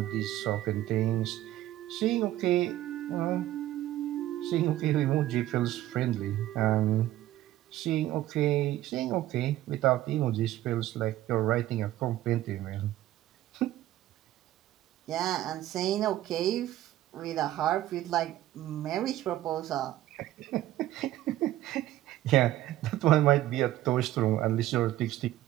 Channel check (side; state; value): left; quieter; 14.3 dB